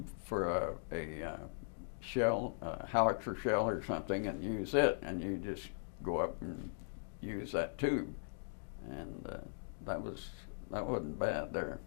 for a shell, a howitzer shell or something, and use it, and you just go up and use that tube, and that wasn't bad there.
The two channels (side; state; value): right; silent; digital silence